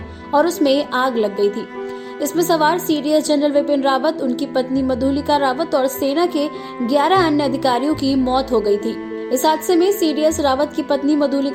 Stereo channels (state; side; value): identical; both; correlation 1.00